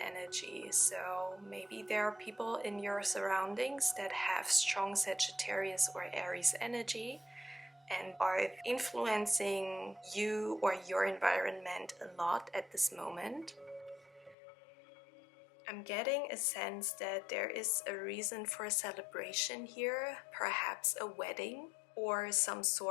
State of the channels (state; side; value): drops out; right; at 14.4 s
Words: So maybe there are people in your surroundings that have strong Sagittarius or Aries energy and are influencing you or your environment a lot at this moment. I'm getting a sense that there is a reason for a celebration here, perhaps a wedding or some